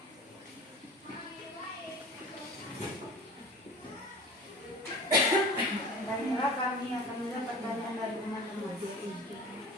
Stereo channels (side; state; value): both; normal; correlation 0.38